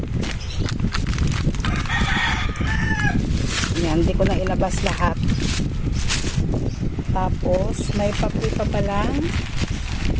Yan, hindi ko na ilabas lahat. Tapos, may papri pa palang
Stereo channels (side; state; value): both; identical; correlation 1.00